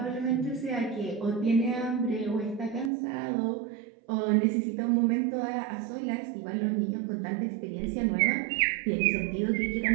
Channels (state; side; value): drops out; left; at 2.9 s